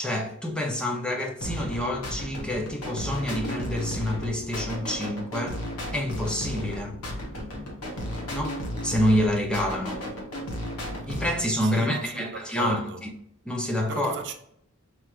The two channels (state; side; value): normal; both; correlation 0.63